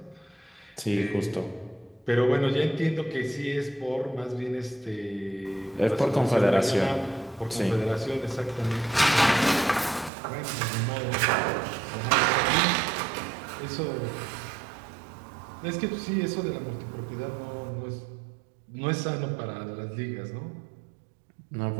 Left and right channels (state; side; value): drops out; left; at 10.1 s